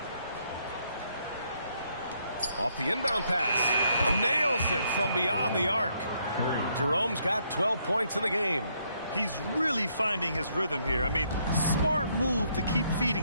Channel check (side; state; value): both; inverted; correlation -0.72